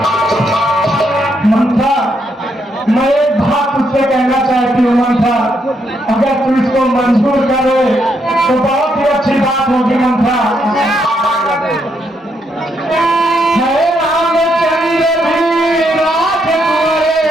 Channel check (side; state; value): both; normal; correlation 0.77